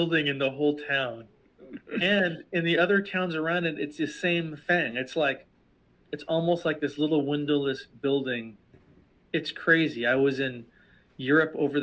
in the whole town. And in the other towns around it, it's the same thing. It's almost like this little windowless building. It's crazy. I was in Europe over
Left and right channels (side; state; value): both; identical; correlation 1.00